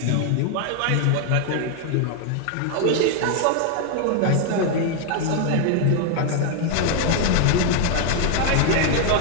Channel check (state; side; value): different; both; correlation 0.00